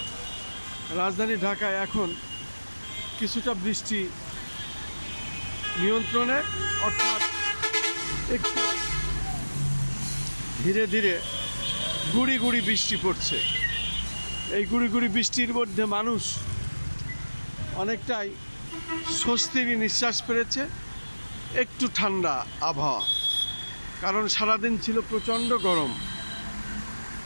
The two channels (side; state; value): both; inverted; correlation -1.00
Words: রাজধানী ঢাকায় এখন কিছুটা বৃষ্টি নিয়ন্ত্রণে, অর্থাৎ একটু ধীরে ধীরে গুড়ি গুড়ি বৃষ্টি পড়ছে। এই গুড়ি গুড়ি বৃষ্টির মধ্যে মানুষ অনেকটাই স্বস্তির নিঃশ্বাস পেরেছে। একটু ঠান্ডা আবহাওয়া, কারণ সারাদিন ছিল প্রচণ্ড গরম।